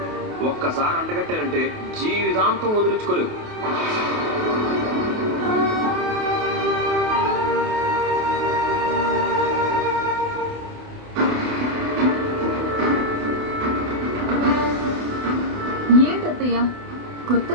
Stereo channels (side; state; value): left; late; 28 ms